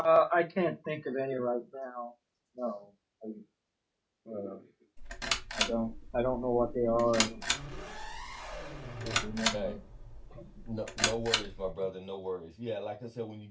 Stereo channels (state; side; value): identical; both; correlation 1.00